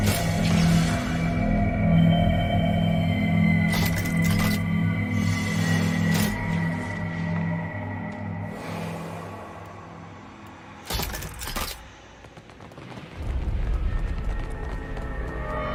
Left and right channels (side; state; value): both; identical; correlation 1.00